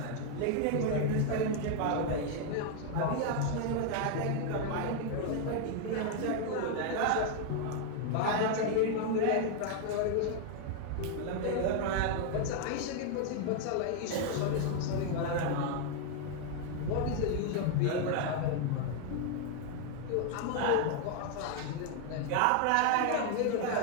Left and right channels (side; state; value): both; different; correlation 0.00